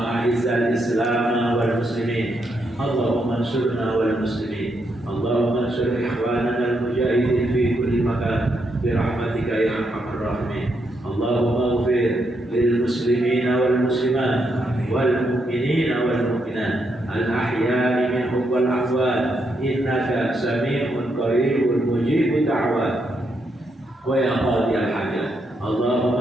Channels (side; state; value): both; normal; correlation 0.79